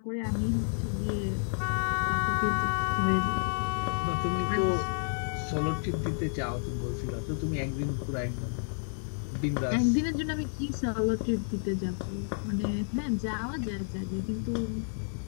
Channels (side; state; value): right; silent; digital silence